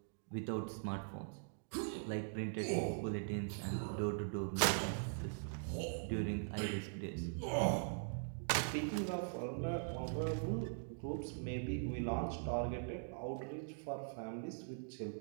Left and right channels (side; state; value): left; silent; digital silence